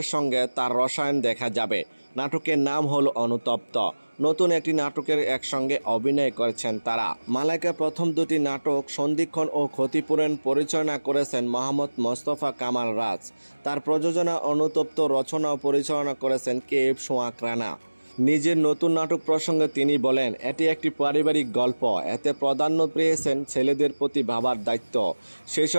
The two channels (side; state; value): both; inverted; correlation -1.00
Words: সঙ্গে তার রসায়ন দেখা যাবে। নাটকের নাম হল অনুতপ্ত। নতুন একটি নাটকের একসঙ্গে অভিনয় করেছেন তারা। মালাইকা প্রথম দুটি নাটক সন্ধিক্ষণ ও ক্ষতিপূরণ পরিচালনা করেছেন মোহাম্মদ মোস্তফা কামাল রাজ। তার প্রযোজনা অনুতপ্ত রচনা ও পরিচালনা করেছেন কে.এফ. সোহাগ রানা। নিজের নতুন নাটক প্রসঙ্গে তিনি বলেন, এটি একটি পারিবারিক গল্প। এতে প্রাধান্য পেয়েছেন ছেলেদের প্রতি ভাবার দায়িত্ব, সেই